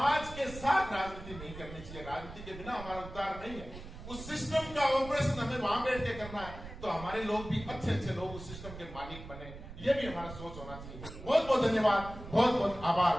के साथ राजनीति नहीं करनी चाहिए। राजनीति के बिना हमारा उद्धार नहीं है। उस सिस्टम का ऑपरेशन हमें वहां बैठ के करना है, तो हमारे लोग भी अच्छे लोग उस सिस्टम के मालिक बने, ये भी हमारा सोच होना चाहिए। बहुत बहुत धन्यवाद, बहुत बहुत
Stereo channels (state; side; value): noise; right; rumble, 13 dB below the sound